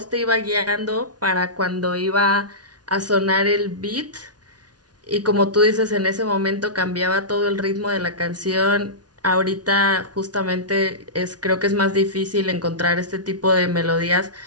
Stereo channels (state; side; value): late; left; 0.69 ms